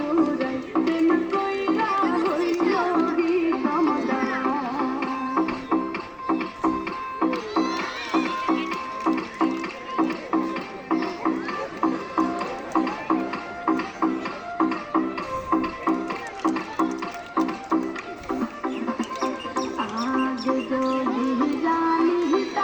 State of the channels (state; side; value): identical; both; correlation 1.00